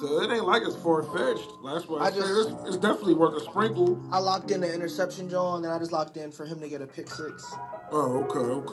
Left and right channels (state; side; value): identical; both; correlation 1.00